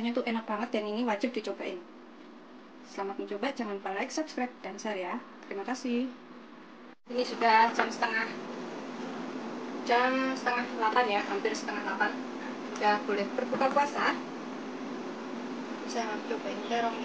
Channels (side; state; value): both; identical; correlation 1.00